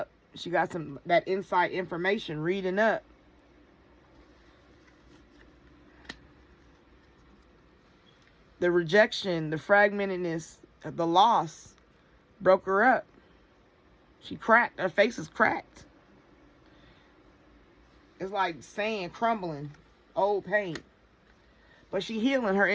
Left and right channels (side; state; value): both; identical; correlation 1.00